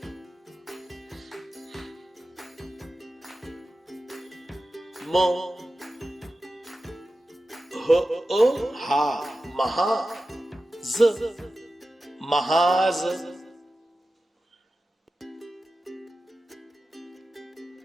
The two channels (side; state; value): both; normal; correlation 0.93